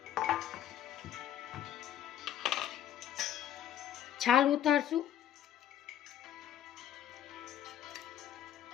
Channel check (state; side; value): quieter; right; 11.0 dB